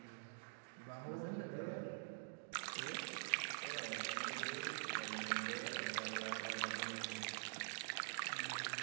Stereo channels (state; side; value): silent; left; digital silence